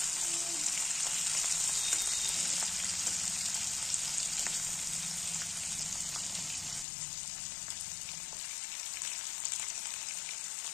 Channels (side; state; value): right; drops out; at 6.9 s